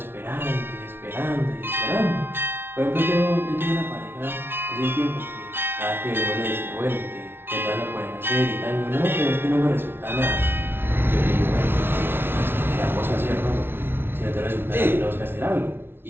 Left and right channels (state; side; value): late; left; 0.11 ms